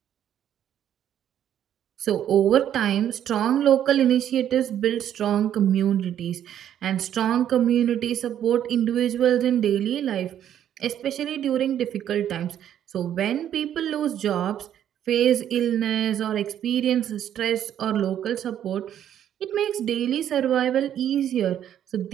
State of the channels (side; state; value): left; quieter; 10.4 dB